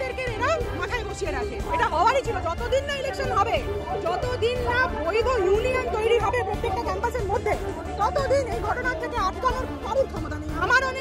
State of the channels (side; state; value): both; identical; correlation 1.00